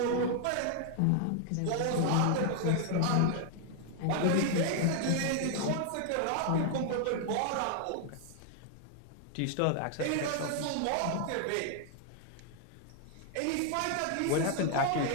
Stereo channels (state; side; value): different; both; correlation 0.00